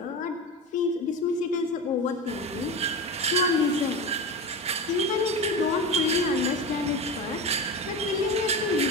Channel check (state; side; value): normal; both; correlation 0.23